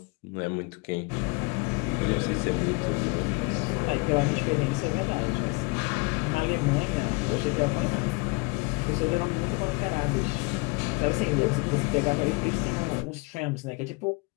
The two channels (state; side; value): quieter; right; 27.7 dB